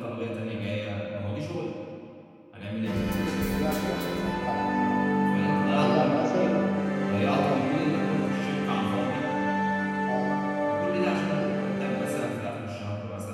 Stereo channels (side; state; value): both; identical; correlation 1.00